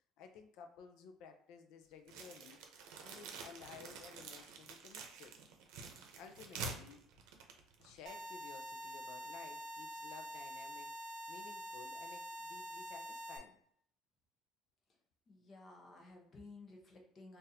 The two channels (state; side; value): normal; both; correlation 0.61